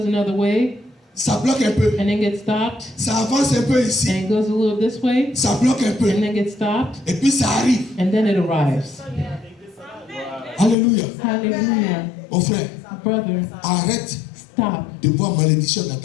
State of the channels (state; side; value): drops out; right; at 10.8 s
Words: another way, Ça bloque un peu. and then gets stopped, Ça avance un peu and ici. it goes a little this way, Ça bloque un peu. and then gets stopped, Et puis ça arrive. and then it arrives. Alléluia. Hallelujah. Mon frère, Brother, arrête stop. de voir malédiction dans